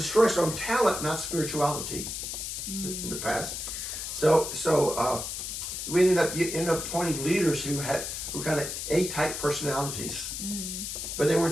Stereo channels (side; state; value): left; noise; hiss, 5 dB below the sound